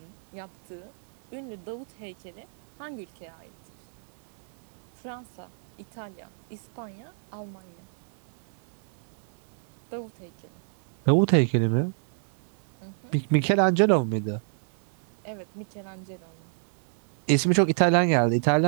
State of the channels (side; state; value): left; silent; 57 dB below the other